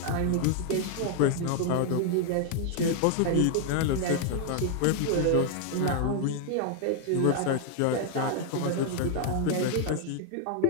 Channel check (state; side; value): different; both; correlation 0.00